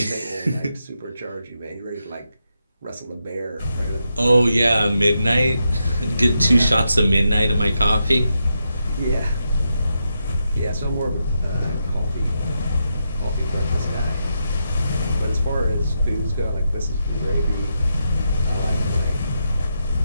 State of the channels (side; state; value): both; inverted; correlation -0.84